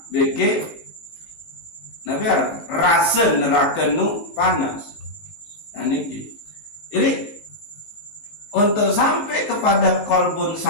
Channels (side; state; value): right; late; 19 ms